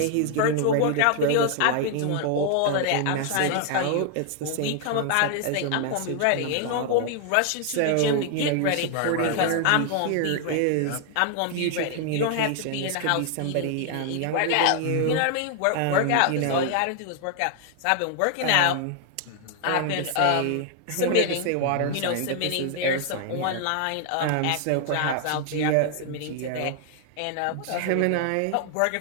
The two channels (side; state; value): both; different; correlation 0.00